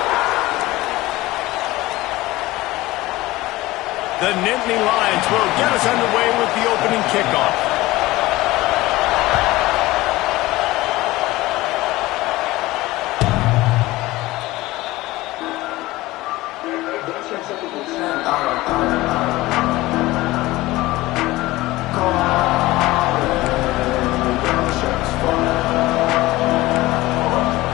The Nittany Lions will get us underway with the opening kickoff.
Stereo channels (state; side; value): quieter; right; 18.8 dB